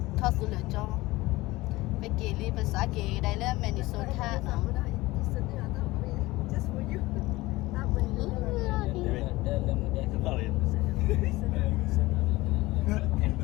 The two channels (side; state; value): right; quieter; 19.8 dB